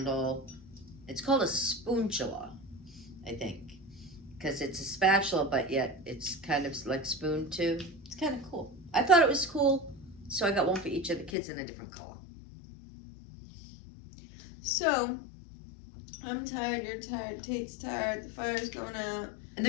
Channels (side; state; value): right; drops out; at 11.3 s